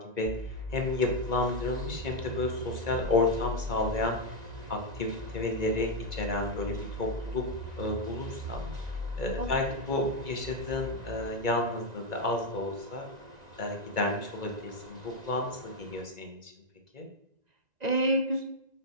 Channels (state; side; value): late; left; 1.9 ms